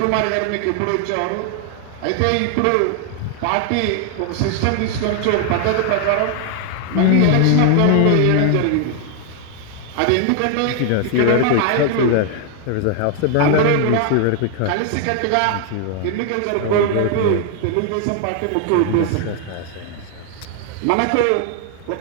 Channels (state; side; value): different; both; correlation 0.00